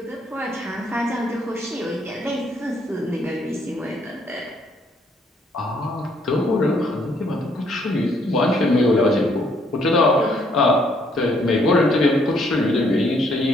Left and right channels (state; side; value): normal; both; correlation 0.68